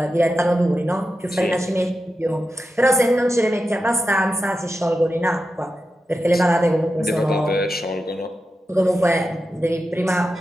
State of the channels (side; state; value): both; normal; correlation 0.90